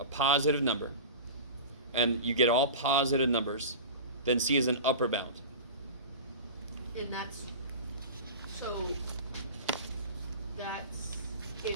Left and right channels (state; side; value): inverted; both; correlation -0.31